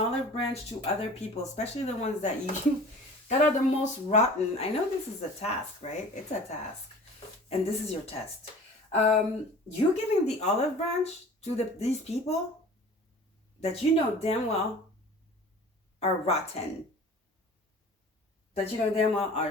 branch to other people, especially the ones that that are the most rotten. I know this is a task, right? It's a task. And this is your test. You giving the olive branch to these people that you know damn well are rotten. That you know damn well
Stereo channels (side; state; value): both; normal; correlation 0.43